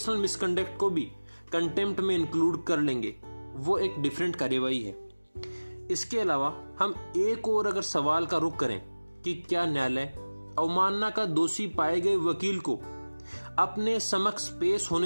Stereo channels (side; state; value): both; inverted; correlation -1.00